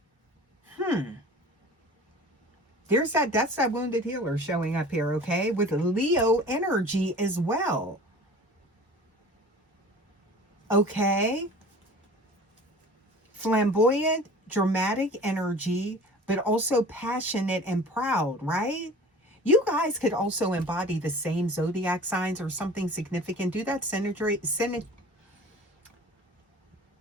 That's that wounded healer showing up here, okay? With Leo energy as well. Okay? Flamboyant, dramatic energy, but also passionate and proud, right? You guys could also embody the same zodiac signs or something significant. Do that synastry,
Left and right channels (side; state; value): both; normal; correlation 0.43